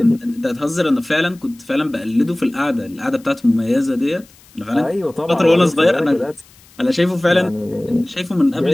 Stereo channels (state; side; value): noise; left; hiss, 27 dB below the sound